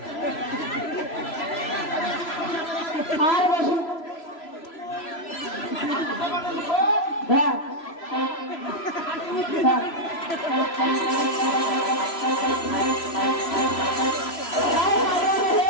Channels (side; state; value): right; late; 3.0 ms